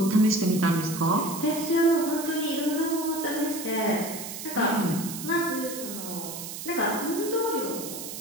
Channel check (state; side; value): noise; right; hiss, 9 dB below the sound